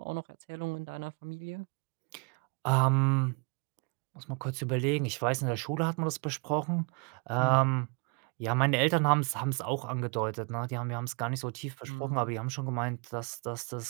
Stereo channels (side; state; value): left; quieter; 35.8 dB